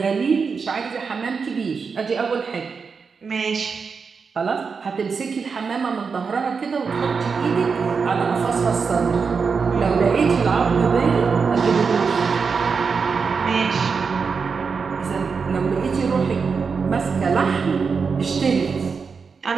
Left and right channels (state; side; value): quieter; left; 5.4 dB